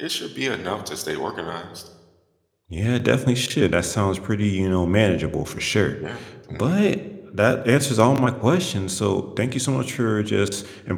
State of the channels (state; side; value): identical; both; correlation 1.00